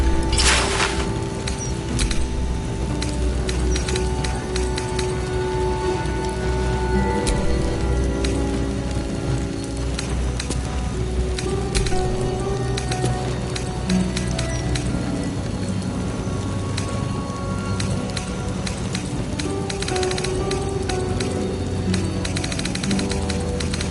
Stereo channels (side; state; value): both; identical; correlation 1.00